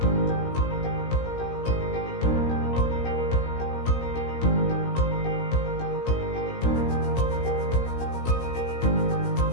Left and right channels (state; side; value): late; right; 17 ms